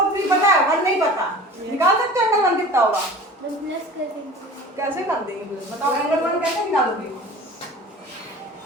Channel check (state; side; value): normal; both; correlation 0.40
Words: 3 पता है, 1 नहीं पता, निकाल सकते हैं एंगल 1 कितना होगा? प्लस कर देंगे। कैसे कर देंगे बताओ, एंगल 1 कैसे निकालोगे?